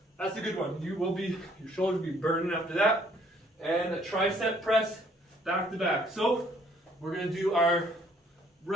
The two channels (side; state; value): both; normal; correlation 0.63